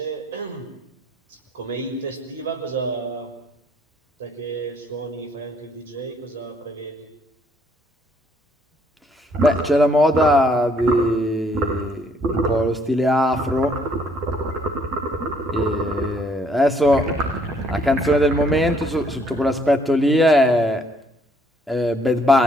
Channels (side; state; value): both; normal; correlation 0.66